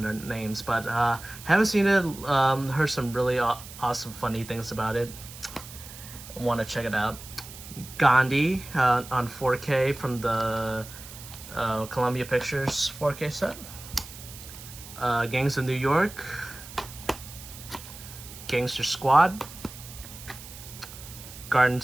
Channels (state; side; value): noise; right; hiss, 15 dB below the sound